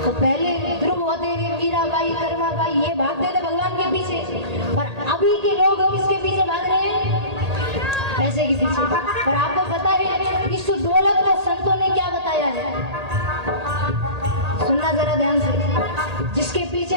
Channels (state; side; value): late; left; 1.8 ms